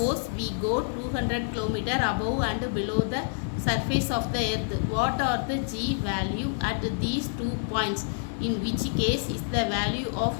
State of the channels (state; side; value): silent; right; digital silence